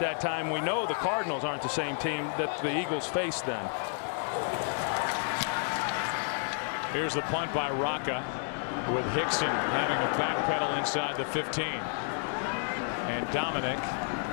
time. We know the Cardinals aren't the same team that the Eagles faced then. Here's the punt by Rocca, with Hickson having a backpedal inside the 15. And Dominic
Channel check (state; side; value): silent; right; 57 dB below the other